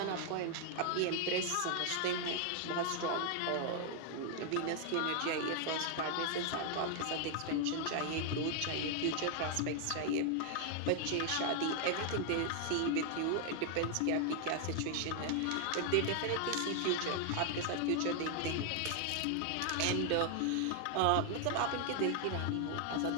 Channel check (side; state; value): both; different; correlation 0.00